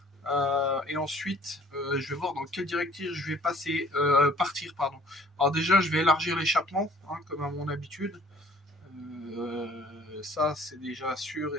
Et ensuite, je vais voir dans quelle directive je vais partir. Pardon. Alors déjà, je vais élargir l'échappement, hein, comme à mon habitude. Ça, c'est déjà sûr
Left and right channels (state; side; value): normal; both; correlation 0.55